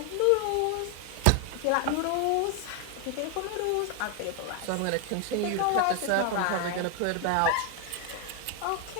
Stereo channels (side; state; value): both; different; correlation 0.00